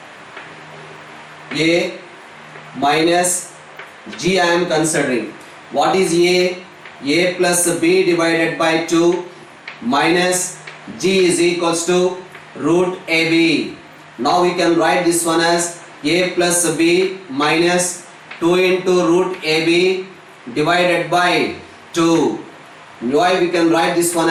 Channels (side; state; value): both; identical; correlation 1.00